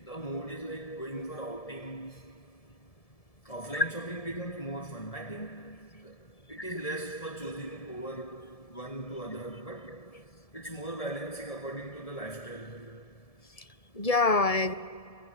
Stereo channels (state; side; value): late; right; 1.7 ms